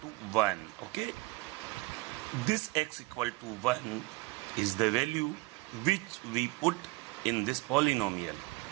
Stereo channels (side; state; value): left; quieter; 23.3 dB